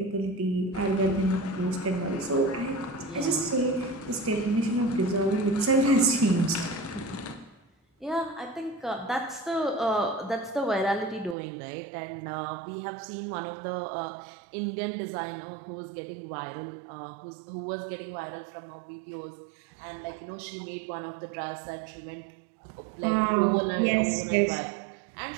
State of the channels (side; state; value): left; drops out; at 11.4 s